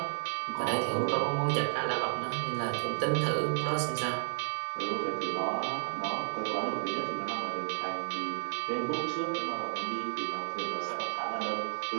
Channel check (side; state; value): left; silent; 56 dB below the other